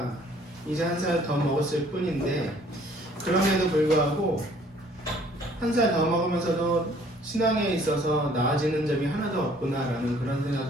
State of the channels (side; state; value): both; normal; correlation 0.58